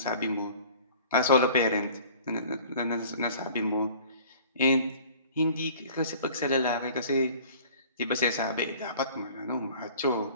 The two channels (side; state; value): both; inverted; correlation -0.48